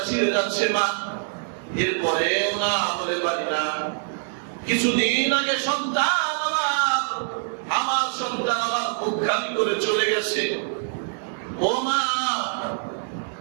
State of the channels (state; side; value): silent; left; digital silence